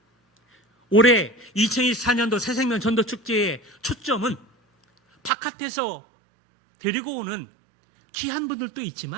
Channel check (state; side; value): drops out; left; at 5.3 s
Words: 올해 2024년도 새생명 전도축제의 초점은 바깥에서 데리고 오는 귀한 분들도